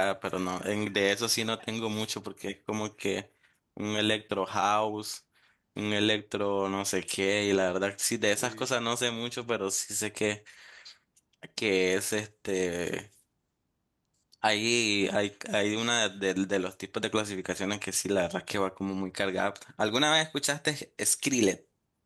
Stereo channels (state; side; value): identical; both; correlation 1.00